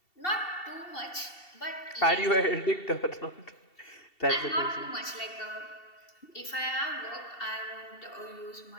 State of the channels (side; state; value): right; late; 2.7 ms